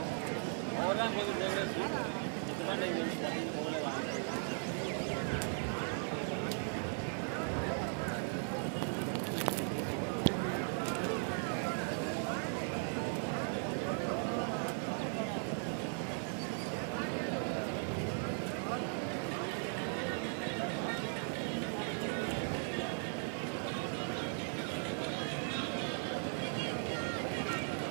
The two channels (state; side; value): silent; left; 52 dB below the other